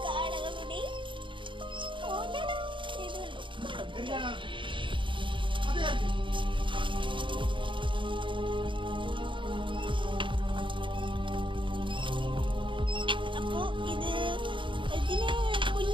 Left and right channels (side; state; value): left; late; 0.24 ms